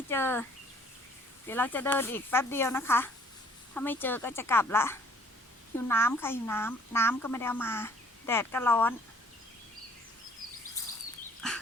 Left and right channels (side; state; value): both; normal; correlation 0.57